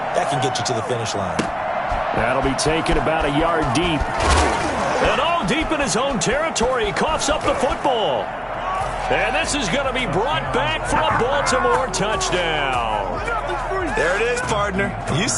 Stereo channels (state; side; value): identical; both; correlation 1.00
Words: That can get you to the finish line. That'll be taken about a yard deep. And all deep in his own territory. He coughs up the football. And this is going to be brought back for a Baltimore touchdown. There it is, partner. You